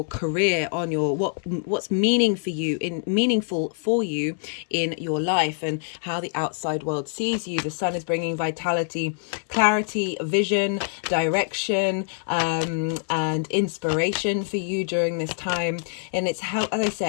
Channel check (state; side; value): silent; right; 62 dB below the other